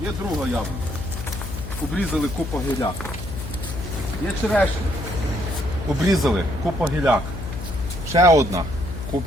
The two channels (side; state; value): left; noise; hum, 8 dB below the sound